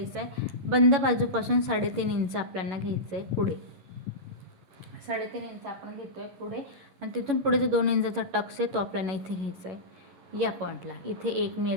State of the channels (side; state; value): left; late; 11 ms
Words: आहे, बंद बाजूपासून 3.5 इंच आपल्याला घ्यायचं आहे पुढे, 3.5 इंच आपण घेतोय पुढे आणि तिथून पुढे जो 2 इंचाचा टक्स आहे तो आपल्याला इथे घ्यायचा आहे या पॉईंटला। इथे एक मी